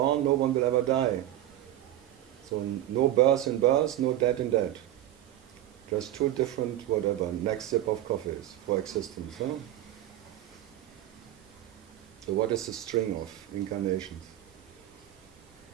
No one will ever die. So no birth in birth, no death in death. Just two different whatever. Next sip of coffees for existence. No? So what is the string of incarnations?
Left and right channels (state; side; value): quieter; left; 13.3 dB